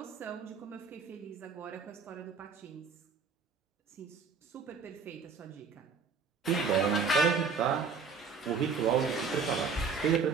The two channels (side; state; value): left; quieter; 5.1 dB